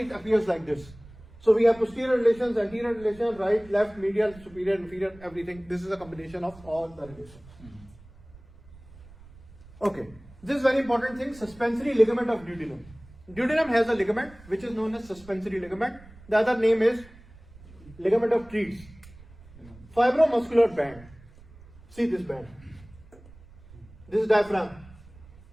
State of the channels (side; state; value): right; noise; rumble, 22 dB below the sound